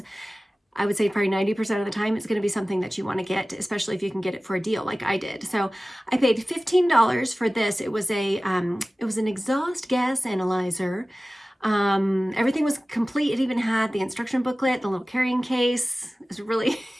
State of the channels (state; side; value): normal; both; correlation 0.97